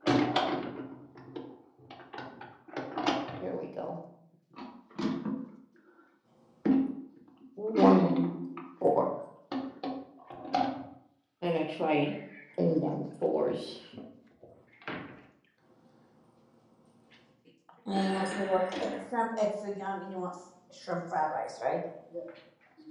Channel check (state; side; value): identical; both; correlation 1.00